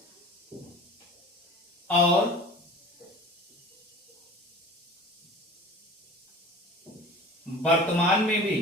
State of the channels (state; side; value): normal; both; correlation 0.40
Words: और वर्तमान में भी